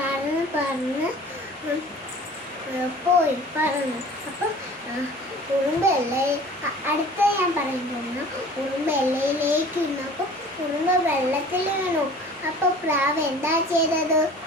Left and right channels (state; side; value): normal; both; correlation 0.45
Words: പോയി പറന്നു. അപ്പോൾ ഉറുമ്പ് അടുത്ത ഞാൻ പറയാൻ പോകുന്നു. ഉറുമ്പ് എല്ലയിലേക്ക് ഇരുന്നപ്പോൾ ഉറുമ്പ് വെള്ളത്തിൽ വീണു. അപ്പോൾ പ്രാവ് എന്താ ചെയ്തത്?